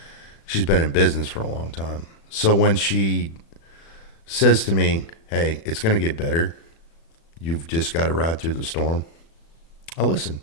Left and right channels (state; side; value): late; right; 36 ms